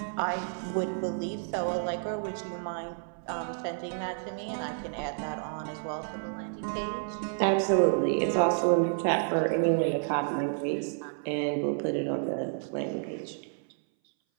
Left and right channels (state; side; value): silent; left; 58 dB below the other